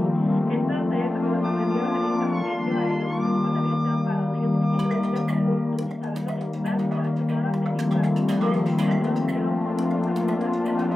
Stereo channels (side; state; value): both; normal; correlation 0.95